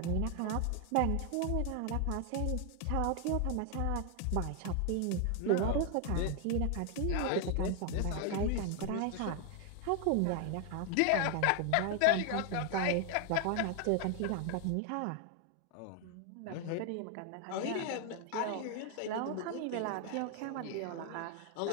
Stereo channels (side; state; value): both; different; correlation 0.00